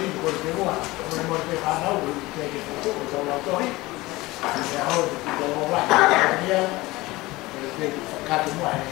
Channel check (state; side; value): quieter; right; 20.2 dB